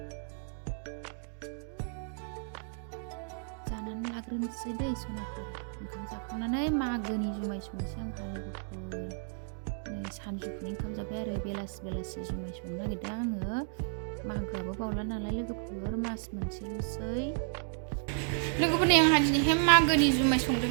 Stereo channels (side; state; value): left; silent; digital silence